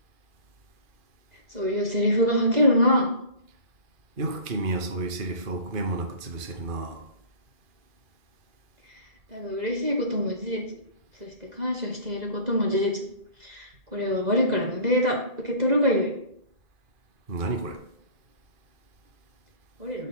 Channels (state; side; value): late; left; 2.4 ms